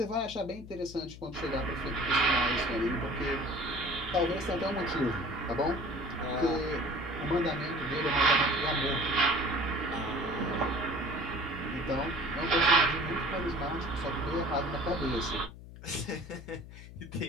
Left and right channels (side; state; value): left; noise; hum, 15 dB below the sound